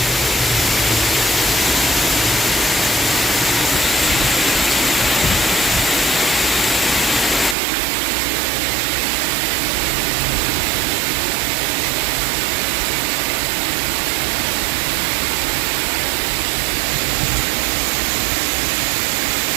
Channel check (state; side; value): drops out; left; at 7.6 s